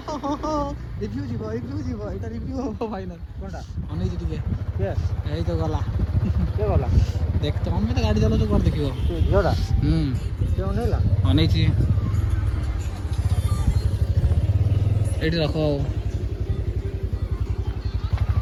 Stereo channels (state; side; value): identical; both; correlation 1.00